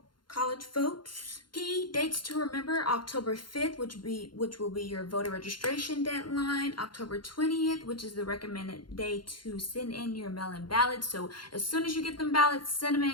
college votes. Key dates to remember: October 5th, which will be your voter registration deadline. October 20th, which is the recommended day to send in your mail-in ballots. So as soon as you get them ballots, send them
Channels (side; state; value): right; late; 0.72 ms